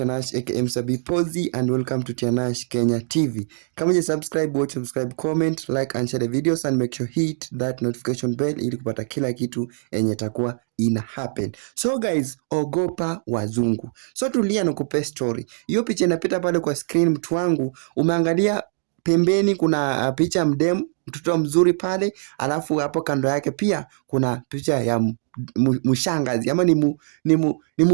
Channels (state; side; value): silent; left; digital silence